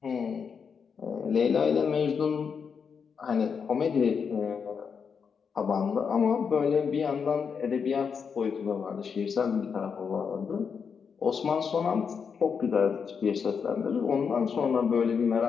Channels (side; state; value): right; quieter; 6.3 dB